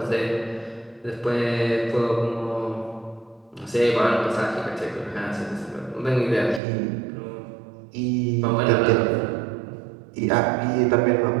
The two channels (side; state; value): left; drops out; at 6.6 s